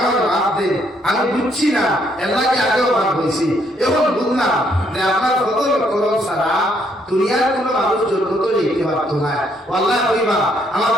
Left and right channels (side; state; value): both; normal; correlation 0.70